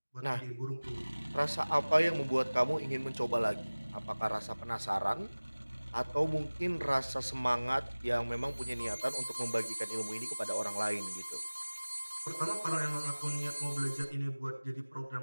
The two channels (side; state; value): both; inverted; correlation -1.00